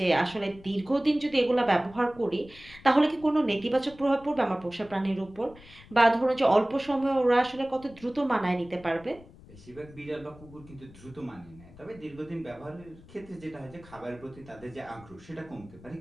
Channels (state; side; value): noise; left; rumble, 21 dB below the sound